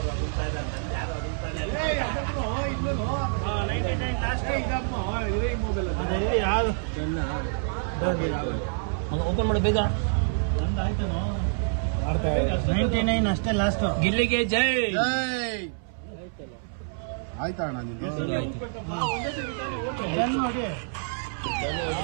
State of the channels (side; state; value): left; silent; 60 dB below the other